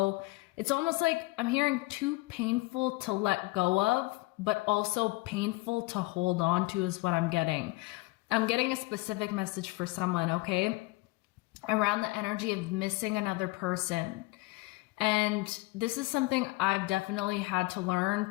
It's almost like I'm hearing too painful to let go of, but also painful to hold on to is what I'm getting. I'm getting a specific message for someone, okay? Around the energy of missing another person. And this is something I've definitely had to learn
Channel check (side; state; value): right; quieter; 22.4 dB